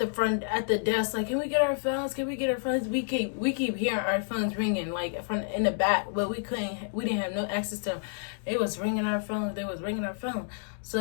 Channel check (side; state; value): right; silent; digital silence